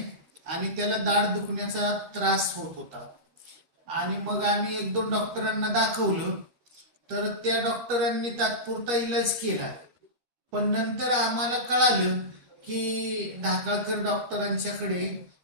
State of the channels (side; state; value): left; late; 13 ms